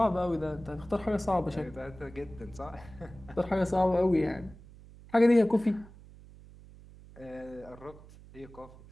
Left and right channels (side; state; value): right; noise; hum, 20 dB below the sound